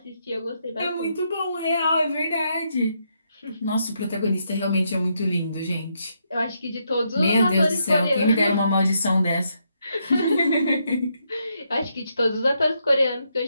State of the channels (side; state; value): both; inverted; correlation -0.78